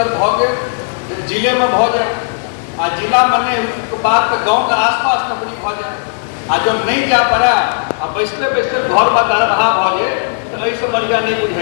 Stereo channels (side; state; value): right; silent; digital silence